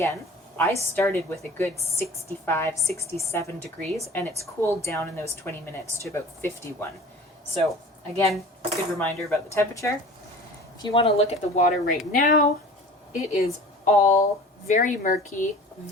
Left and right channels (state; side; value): normal; both; correlation 0.42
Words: I started with a good 65, 67 degrees and it's cooled down in those 20 minutes to about 51. So Again, good reminder about the temperature. If you want to look at the water right now, it is all very murky,